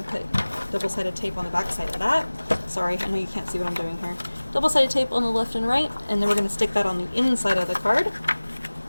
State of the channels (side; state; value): both; inverted; correlation -1.00